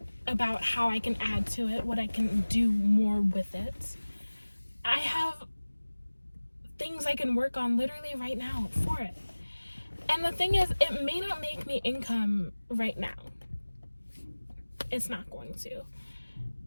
about how I can add to it, what I can do more with it. I have things I can work on literally right now for it. And the thing is, it may not make me income right now. It's not going to.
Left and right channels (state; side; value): inverted; both; correlation -1.00